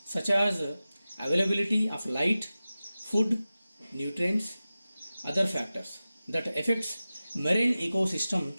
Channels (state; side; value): inverted; both; correlation -0.95